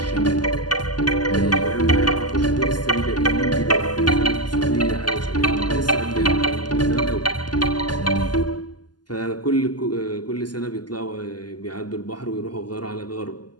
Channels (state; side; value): late; right; 0.70 ms